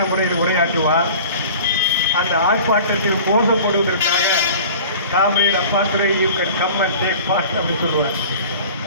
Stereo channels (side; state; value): both; inverted; correlation -0.41